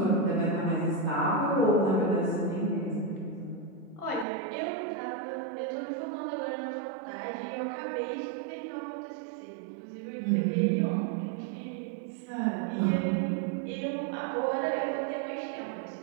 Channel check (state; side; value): drops out; left; at 4.2 s